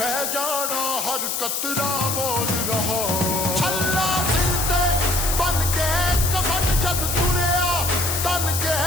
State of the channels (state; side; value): noise; left; hiss, 1 dB below the sound